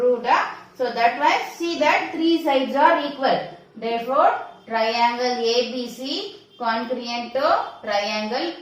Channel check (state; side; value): identical; both; correlation 1.00